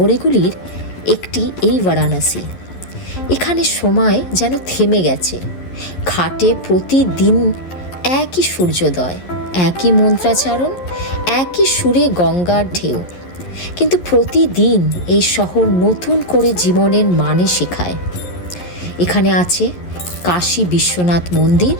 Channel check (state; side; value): late; right; 11 ms